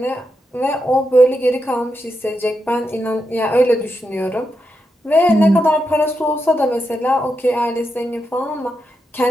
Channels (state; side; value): normal; both; correlation 0.85